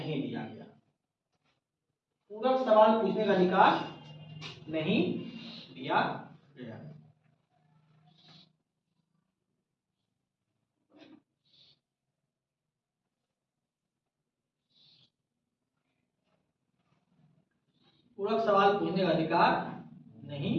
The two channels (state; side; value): identical; both; correlation 1.00